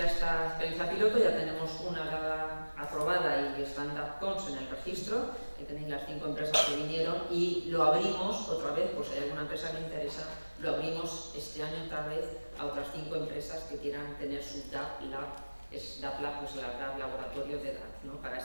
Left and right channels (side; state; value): both; inverted; correlation -1.00